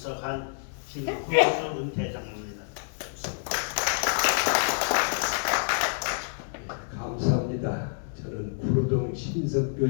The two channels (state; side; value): silent; right; 57 dB below the other